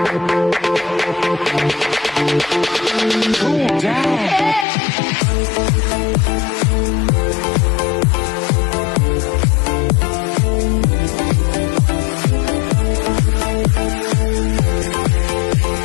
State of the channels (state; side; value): drops out; right; at 4.7 s